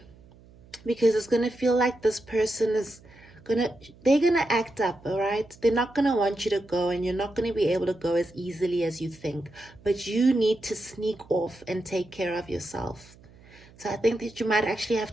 Because it's going to feel like this person is they're going to act up, all right? They're not going to want you to go, and you're not going to be able to go as easily as you think. But you need to sneak off and take care of yourself. So I think that you might actually have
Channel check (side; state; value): right; noise; hum, 25 dB below the sound